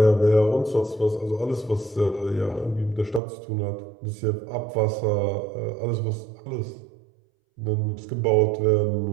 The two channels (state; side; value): drops out; left; at 3.2 s